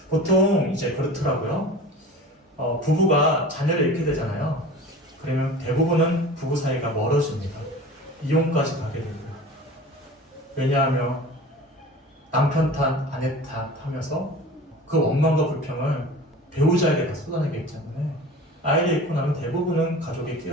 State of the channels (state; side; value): normal; both; correlation 0.38